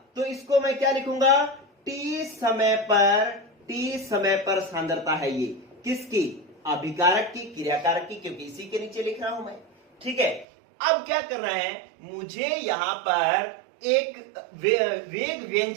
तो इसको मैं क्या लिखूंगा? t समय पर सांद्रता है ये किसकी? अभिकारक की, क्रियाकारक की, क्योंकि इसी के नीचे लिख रहा हूं मैं। ठीक है, अब क्या करना है, मुझे यहां पर एक वेग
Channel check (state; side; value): drops out; left; at 10.5 s